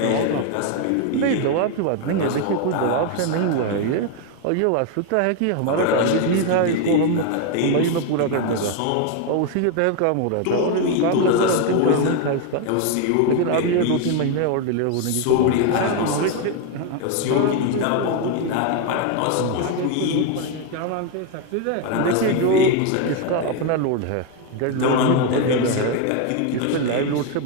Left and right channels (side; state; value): both; different; correlation 0.01